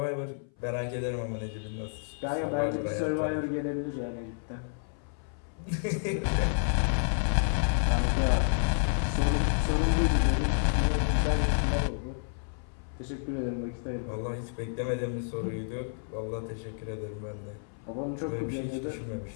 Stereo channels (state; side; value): silent; right; 58 dB below the other